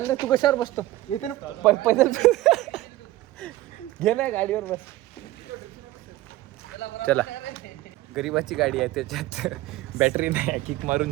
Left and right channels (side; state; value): left; quieter; 16.5 dB